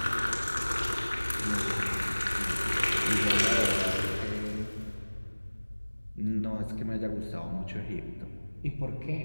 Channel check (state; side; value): inverted; both; correlation -1.00